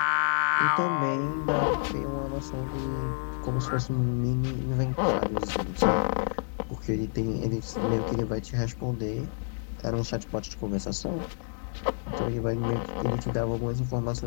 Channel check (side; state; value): right; silent; digital silence